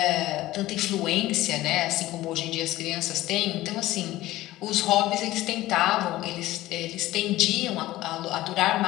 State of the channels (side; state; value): right; quieter; 16.5 dB